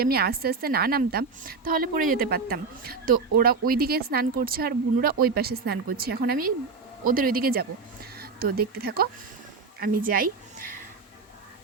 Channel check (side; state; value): left; quieter; 4.6 dB